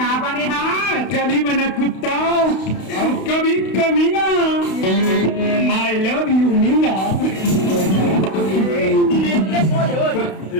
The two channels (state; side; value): late; right; 32 ms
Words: बने हाँ कभी बना कुत्ता और कभी कमीना आई लव यू मीना